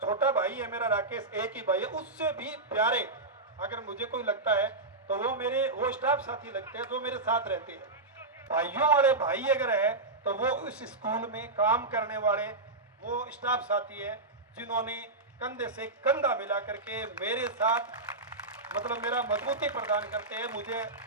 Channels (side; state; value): left; quieter; 3.2 dB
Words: छोटा भाई है मेरा राकेश, एक ही भाई है, उससे भी प्यारे अगर मुझे कोई लगता है तो वो स्टाफ साथी लगते हैं जो मेरे साथ रहते हैं। भाइयों वाले भाई अगर है तो वो इस स्कूल में काम करने वाले वो स्टाफ साथी है जिन्होंने कंधे से कंधा मिला करके मेरे साथ मतलब मेरा मजबूती प्रदान करते हैं, मुझे